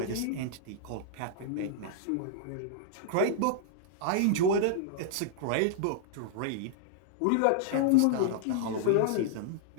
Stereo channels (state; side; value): different; both; correlation -0.01